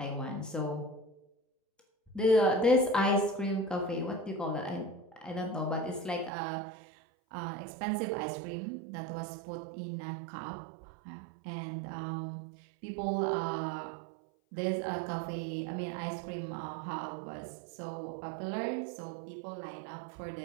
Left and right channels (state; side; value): drops out; left; at 6.3 s